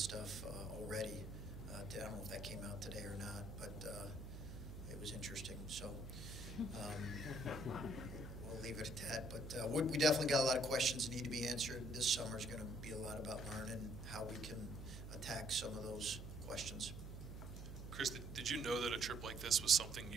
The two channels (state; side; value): noise; right; hum, 9 dB below the sound